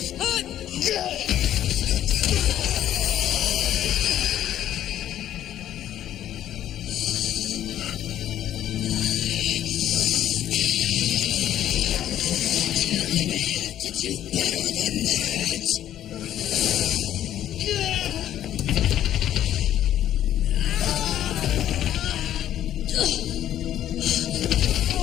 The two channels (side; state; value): right; quieter; 11.6 dB